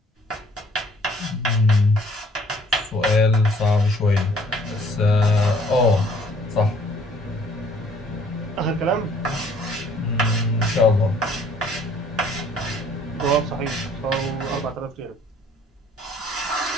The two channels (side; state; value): both; normal; correlation 0.59